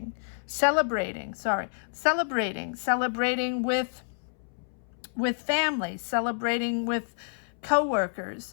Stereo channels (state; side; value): silent; right; 59 dB below the other